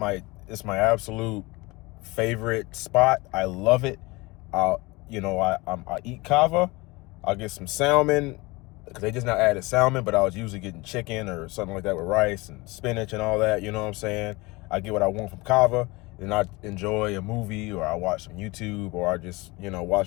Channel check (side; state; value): right; quieter; 23.6 dB